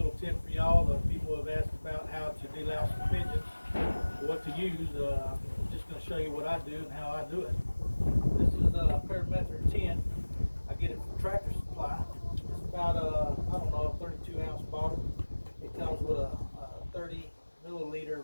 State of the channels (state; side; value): inverted; both; correlation -1.00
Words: tip for y'all. The people have asked about how to de-louse for pigeons, what to use. I'm just going to show you what I do and how I do it. This is a Birmingham 10. I get it from Tractor Supply. It's about I don't know, a 32-ounce bottle. It comes with a 30 milliliter